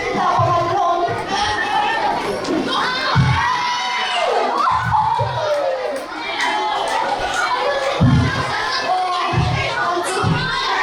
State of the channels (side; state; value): both; identical; correlation 1.00